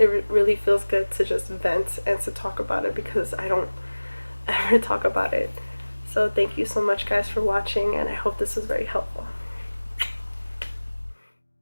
really feels good to just vent and to talk about it, because I don't ever talk about it. So thank you so much guys for watching, and I hope this was very helpful.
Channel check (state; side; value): inverted; both; correlation -1.00